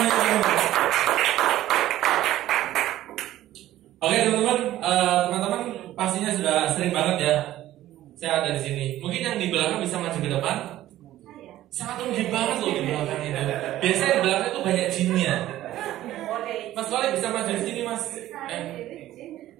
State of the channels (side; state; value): left; quieter; 14.2 dB